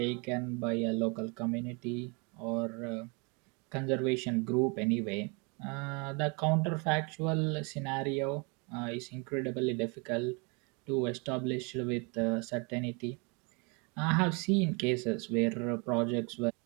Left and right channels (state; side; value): quieter; left; 32.0 dB